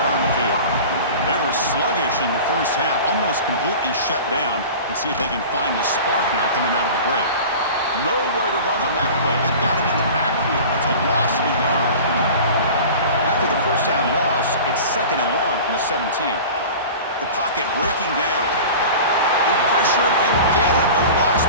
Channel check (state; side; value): inverted; both; correlation -0.37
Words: on the field. They were sluggish in the first half, almost completely shut down. Let's see if they can find a spark now coming out of the break. Nowhere to run on that play. They've got him in the backfield. It's a loss of a yard. After the first down loss, it's 2nd and long from the 17. The pocket breaking down. They pressure him and get him. The loss